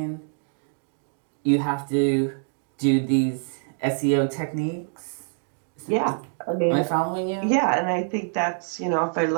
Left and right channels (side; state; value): left; silent; 61 dB below the other